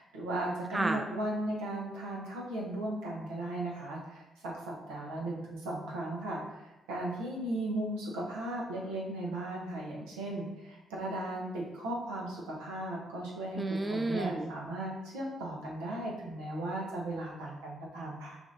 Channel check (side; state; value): both; normal; correlation 0.70